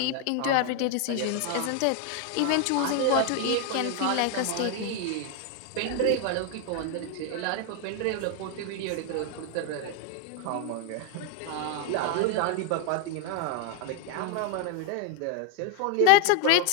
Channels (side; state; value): both; different; correlation 0.00